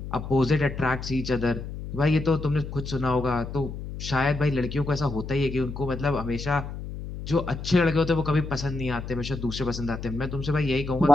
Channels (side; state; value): left; noise; hum, 9 dB below the sound